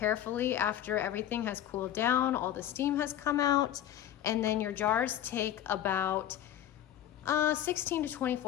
after everything has cooled down, all the steam has come out, and then your jars take about 16 to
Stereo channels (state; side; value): quieter; right; 11.4 dB